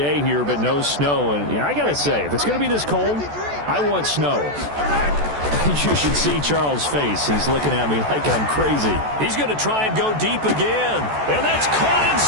here, but no snow. And I got to say, if it's going to be this cold, I want snow. You should see Charles' face. He's looking at me like I'm crazy. He's going to try and go deep again. And that's caught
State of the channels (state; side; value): late; left; 14 ms